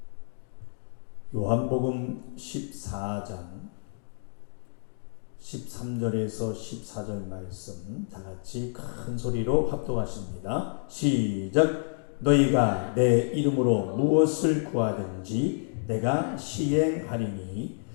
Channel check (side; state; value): right; silent; digital silence